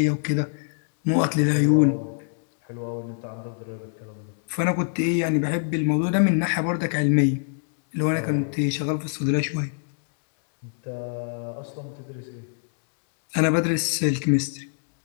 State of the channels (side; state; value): right; silent; 62 dB below the other